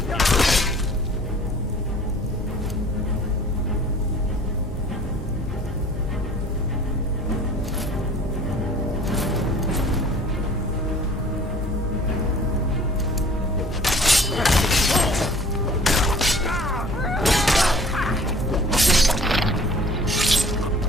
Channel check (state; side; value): normal; both; correlation 0.49